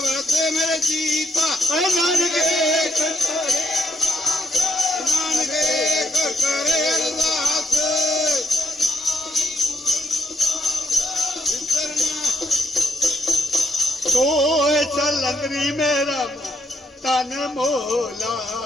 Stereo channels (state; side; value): normal; both; correlation 0.76